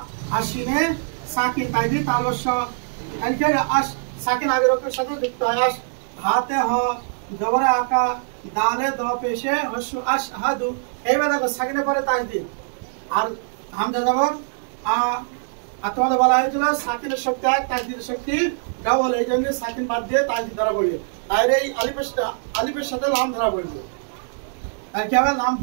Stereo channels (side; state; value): left; silent; digital silence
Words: আশিনে সাকিন তাইদি তালস্য তারিখে সাকিন আগের অক্ষরের সাথে যুক্ত হয়। হাতে হ জবরে আকা দালে দ পেশে হস্যু আশহাদু। এইবার দেখো সাকিনের পরে তাজদিদ আর হামজা জবর আর তোমাদের বলা হয়েছিল সাকিনের শক্তি এক, তাজদিদের শক্তি ডাবল। এই জন্য সাকিন বাদ দিয়ে তাজদিদ ধরা পড়বে। আর এই আলিফের সাথে লাম ধরা পড়বে। আর কি হবে? লাম